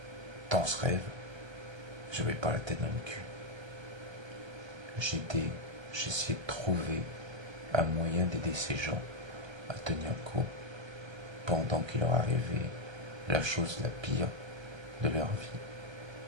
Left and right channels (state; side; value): late; left; 1.3 ms